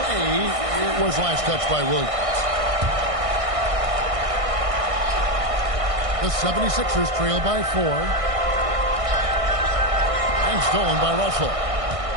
it was last touched by Williams. The 76ers trail by 4. And stolen by Russell.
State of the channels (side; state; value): left; late; 1.6 ms